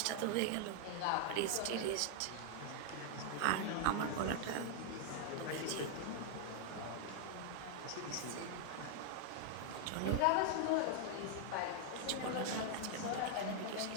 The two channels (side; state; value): both; different; correlation 0.00